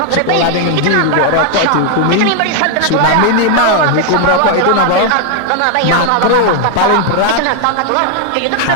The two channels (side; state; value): both; different; correlation 0.00